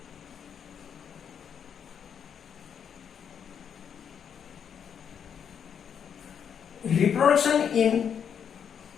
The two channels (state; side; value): quieter; right; 7.8 dB